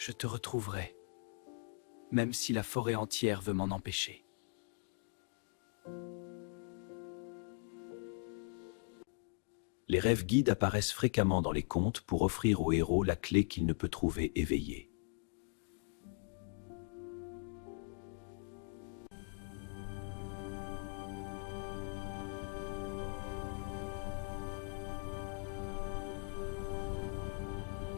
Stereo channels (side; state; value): right; silent; 51 dB below the other